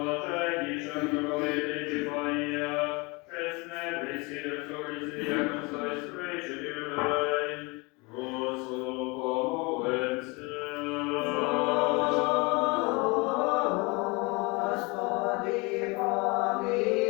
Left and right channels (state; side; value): quieter; right; 27.4 dB